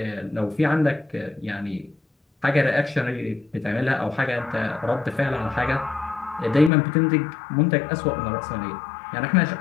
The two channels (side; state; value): right; drops out; at 6.7 s